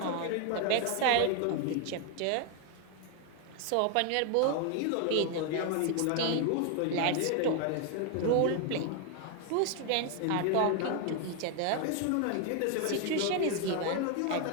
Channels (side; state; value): both; different; correlation 0.01